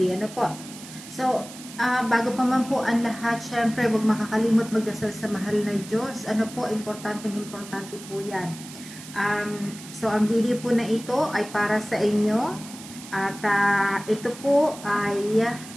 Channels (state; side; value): noise; right; hiss, 15 dB below the sound